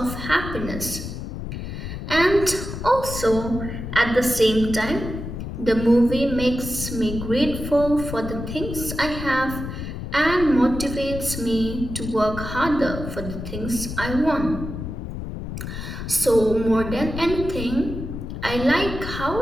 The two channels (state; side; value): noise; left; rumble, 7 dB below the sound